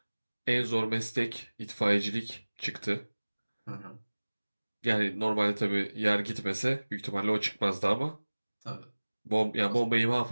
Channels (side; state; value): both; inverted; correlation -1.00